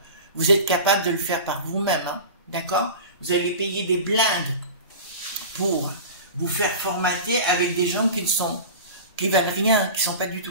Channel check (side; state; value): both; inverted; correlation -0.33